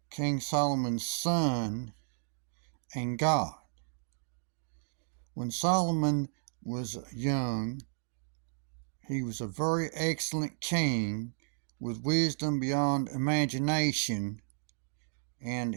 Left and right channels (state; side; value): silent; left; digital silence